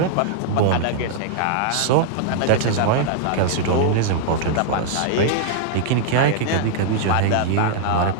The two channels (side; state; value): both; different; correlation -0.01